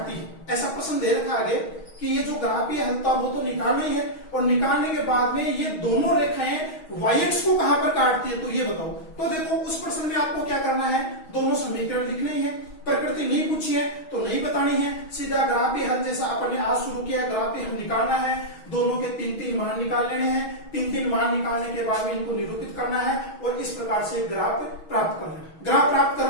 है। ऐसा प्रश्न दे रखा आगे कि ये जो ग्राफीय हल था वो तो निकालना ही है और निकालने के बाद में ये दोनों रेखाएं y-x को कहां पर काटती है तो ये बताओ। तो देखो उस प्रश्न में आपको क्या करना है, दोनों समीकरण लिखने ही है, प्रकृति नहीं पूछी है तो नहीं बतानी है, सीधा ग्राफीय हल जैसा अपन ने आज शुरू किया ग्राफीय हल निकालना है। दोनों के 3-3 मान निकाल लेने हैं, 3-3 मान निकालने के बाद में इनको निरूपित करना है और इस प्रकार से ग्राफ प्राप्त करना है। ग्राफ प्राप्त कर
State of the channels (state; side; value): late; right; 6.3 ms